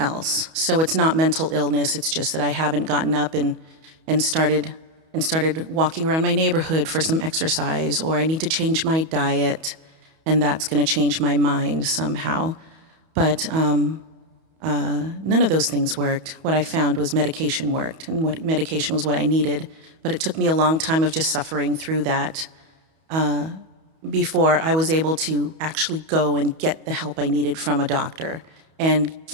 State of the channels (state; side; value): late; left; 31 ms